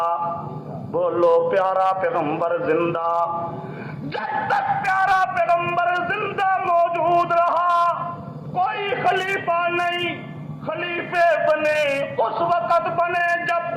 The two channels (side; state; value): both; identical; correlation 1.00